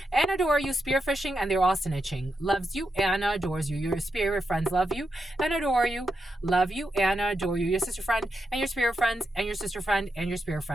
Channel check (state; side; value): normal; both; correlation 0.86